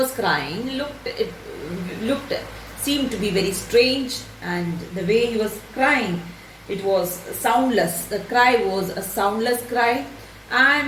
crying seemed to be very strange, and the way he was crying, it was soundless. The cry was a soundless cry.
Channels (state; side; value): identical; both; correlation 1.00